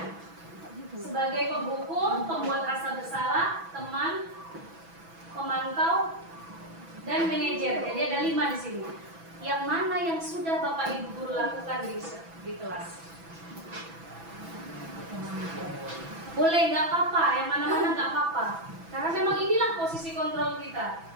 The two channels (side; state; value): left; late; 6.1 ms